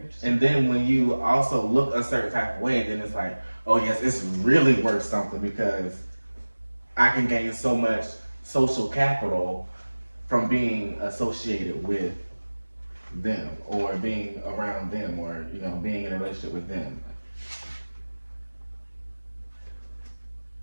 And then when you also look a certain type of way, then it's like, oh yes, it's really worth something because I can gain so much social capital from being associated with them, or being around them, or you know, being in a relationship with them.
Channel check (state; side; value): inverted; both; correlation -1.00